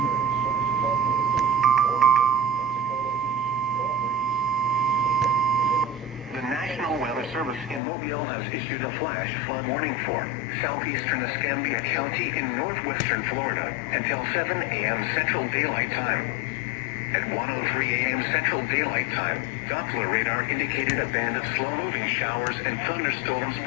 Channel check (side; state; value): right; drops out; at 7.8 s